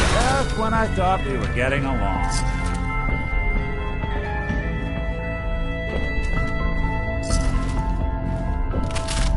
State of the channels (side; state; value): both; identical; correlation 1.00